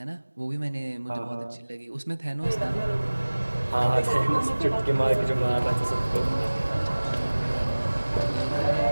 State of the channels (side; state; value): both; inverted; correlation -1.00